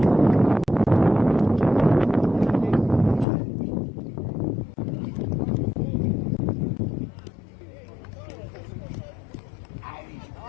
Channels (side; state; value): right; drops out; at 3.2 s